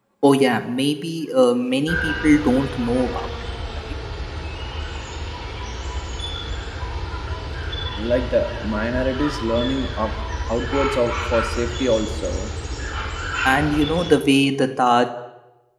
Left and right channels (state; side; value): identical; both; correlation 1.00